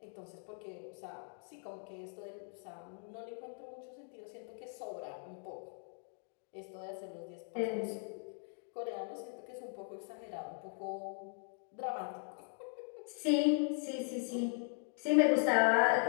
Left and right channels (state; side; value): silent; right; 52 dB below the other